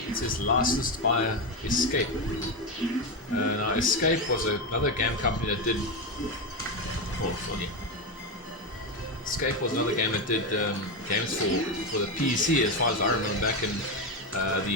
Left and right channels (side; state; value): both; normal; correlation 0.12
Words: says licensed by Escape. Now Escape was another game company that did. Escape was another game that did games for the PC, as far as I remember, back in